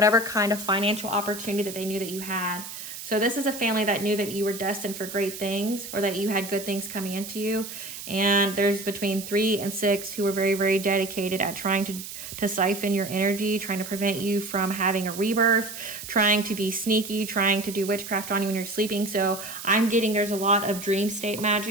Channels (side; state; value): right; noise; hiss, 10 dB below the sound